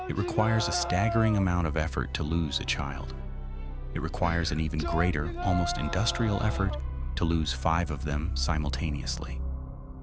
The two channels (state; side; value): identical; both; correlation 1.00